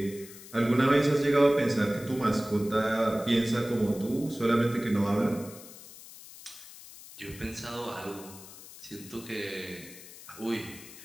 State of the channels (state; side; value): noise; left; hiss, 17 dB below the sound